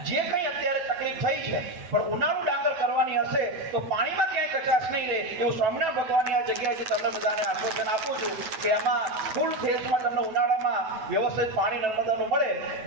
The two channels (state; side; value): late; left; 9.2 ms